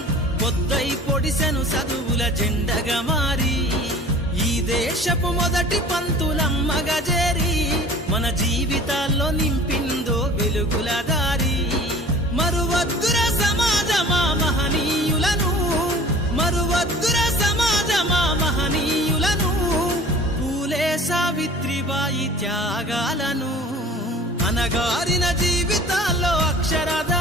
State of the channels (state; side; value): normal; both; correlation 0.45